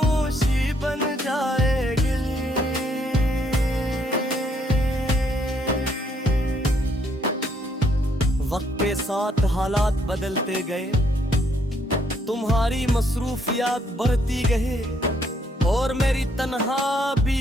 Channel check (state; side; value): normal; both; correlation 0.70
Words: बन जाएगी। वक्त के साथ हालात बदलते गए, तुम्हारी मसरूफियात बढ़ती गई और मेरी तन्हा